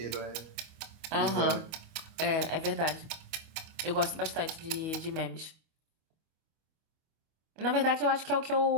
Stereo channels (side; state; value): left; late; 25 ms